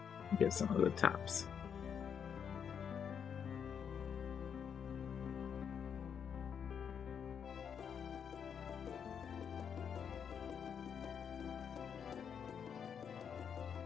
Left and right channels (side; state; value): right; quieter; 7.5 dB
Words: get some of the tops.